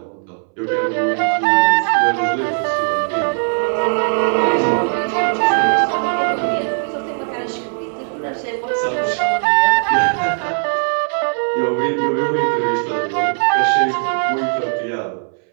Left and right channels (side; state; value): left; silent; 67 dB below the other